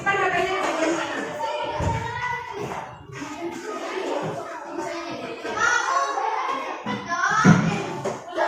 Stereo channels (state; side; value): identical; both; correlation 1.00